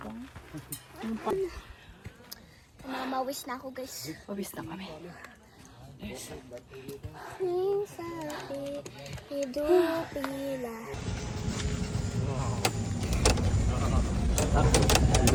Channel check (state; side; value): identical; both; correlation 1.00